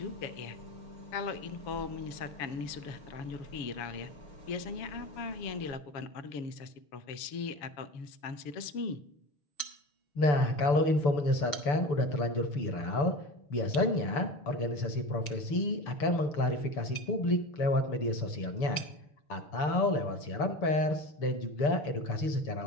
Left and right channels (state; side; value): late; right; 6.9 ms